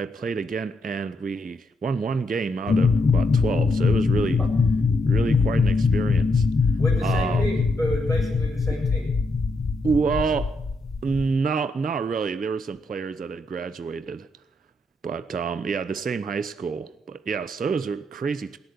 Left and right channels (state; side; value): normal; both; correlation 0.79